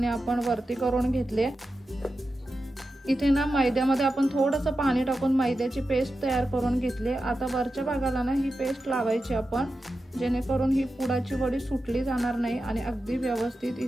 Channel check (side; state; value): both; normal; correlation 0.91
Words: आपण वरती करून घेतले। इथे ना मैद्यामध्ये आपण थोडंसं पाणी टाकून मैद्याची पेस्ट तयार करून घेतली। आता वरच्या भागाला ना ही पेस्ट लावायची आपण, जेणेकरून ही पुडाची वडी सुटली जाणार नाही आणि अगदी व्यवस्थित